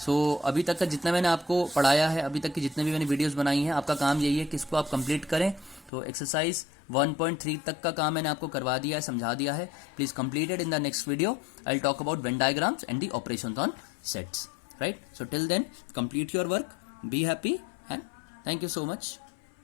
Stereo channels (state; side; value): drops out; right; at 5.9 s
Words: सो अभी तक का जितना मैंने आपको पढ़ाया है, अभी तक की जितने भी मैंने वीडियोस बनाई हैं, आपका काम यही है कि इसको आप कंप्लीट करें। तो एक्सरसाइज 1.3 तक का काम मैंने आपको करवा दिया है, समझा दिया है। Please completed. In the next video I will talk about Venn diagrams and the operations on sets, right. So till then complete your work, be happy, and thank you so much.